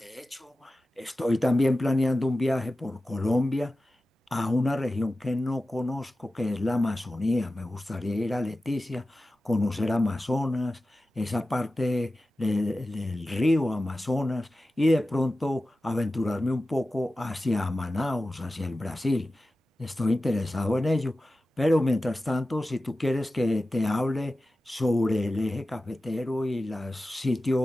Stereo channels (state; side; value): normal; both; correlation 0.94